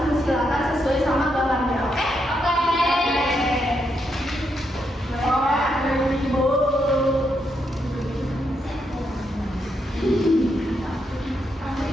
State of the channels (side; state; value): both; normal; correlation 0.80